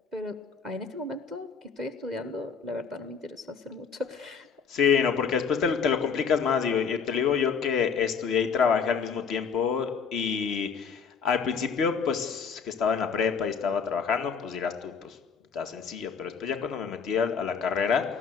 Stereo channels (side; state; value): right; quieter; 6.1 dB